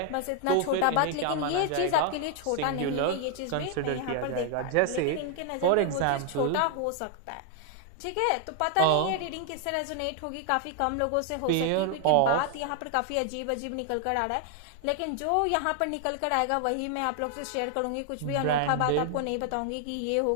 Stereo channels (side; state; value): both; different; correlation 0.00